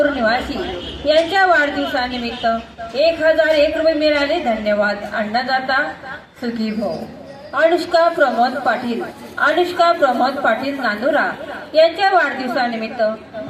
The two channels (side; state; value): both; identical; correlation 1.00